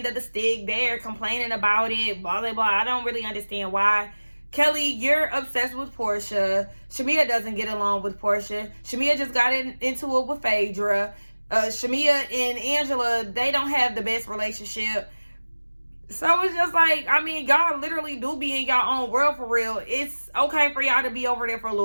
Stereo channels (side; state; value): both; inverted; correlation -1.00